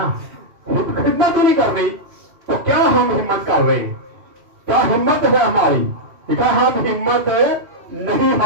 खिदमत ही नहीं करनी तो क्या हम हिम्मत कर रहे हैं? क्या हिम्मत है हमारी? देखा, हम हिम्मत नहीं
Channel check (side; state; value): left; late; 2.8 ms